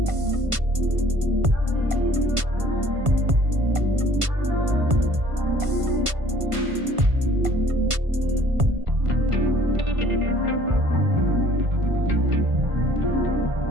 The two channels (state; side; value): late; left; 1.5 ms